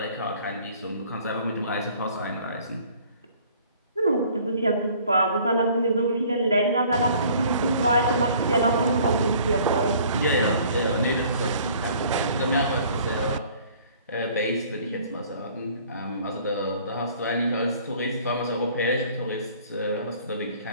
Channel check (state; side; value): inverted; both; correlation -0.54